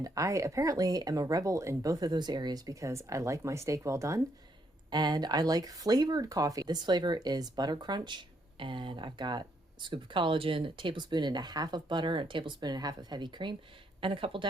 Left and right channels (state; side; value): normal; both; correlation 0.74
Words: I apparently am a rebel in both of those areas because I like my steak well done and I like flavored coffee. This flavor is Butter Crunch, and I've got a scoop of collagen, a tablespoon and a half of butter, a tablespoon and a half of heavy cream, and a couple